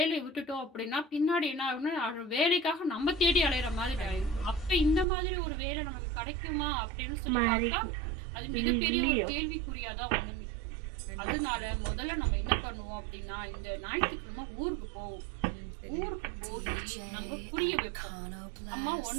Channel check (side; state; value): left; drops out; at 5.1 s